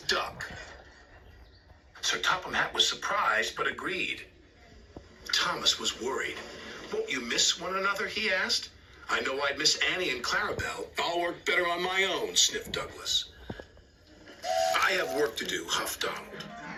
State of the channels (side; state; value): both; identical; correlation 1.00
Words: Duck." Sir Topham Hatt was surprised, but agreed. Thomas was worried. "Won't you miss one another?" he asked. "I know I'd miss Annie and Clarabelle. I'll work better on my own," sniffed Douglas. "I have work to do," huffed Donald.